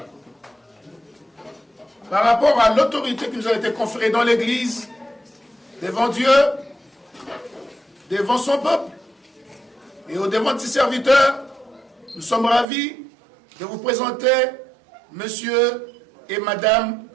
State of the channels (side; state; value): left; drops out; at 12.7 s